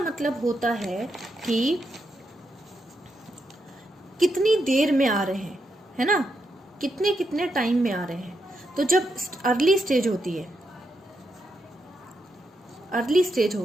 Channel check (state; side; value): normal; both; correlation 0.83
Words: होता है कि कितनी देर में आ रहे हैं, है ना, कितने कितने टाइम में आ रहे हैं। तो जब अर्ली स्टेज